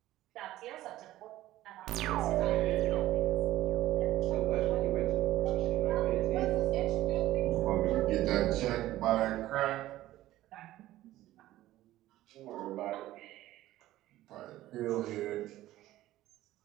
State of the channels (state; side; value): quieter; left; 15.2 dB